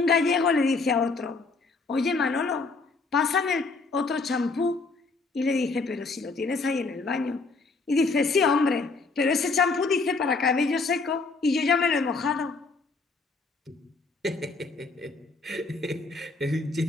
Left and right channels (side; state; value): right; quieter; 3.9 dB